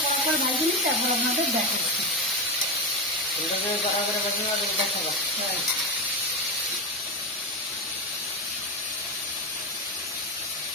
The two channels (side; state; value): both; normal; correlation 0.13